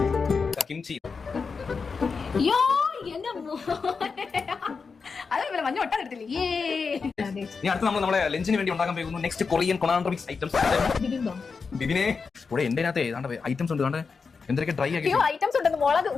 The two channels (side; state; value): right; quieter; 5.0 dB